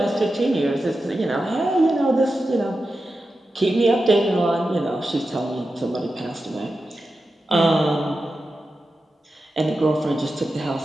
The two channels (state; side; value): normal; both; correlation 0.91